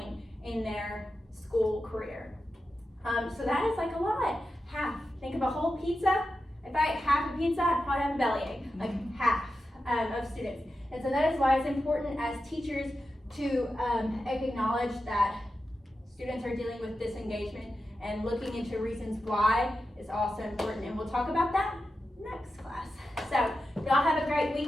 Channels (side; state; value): both; normal; correlation 0.91